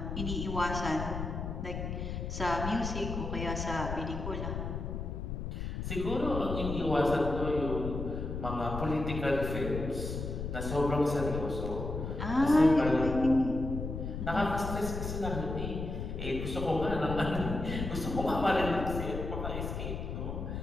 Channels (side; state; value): left; noise; rumble, 4 dB below the sound